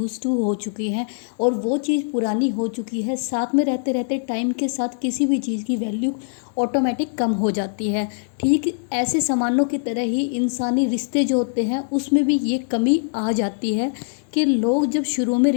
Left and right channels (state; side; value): silent; right; digital silence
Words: टू हो चुके हैं और वो चीज़ पुरानी हो चुकी है। साथ में रहते रहते टाइम के साथ किसी भी चीज़ की वैल्यू ऑटोमेटिक कम हो जाती है। ठीक ऐसे सामानों की तरह ही इंसानी रिश्ते जो होते हैं उसमें भी ये कमी आ जाती है कि लोग जब शुरू में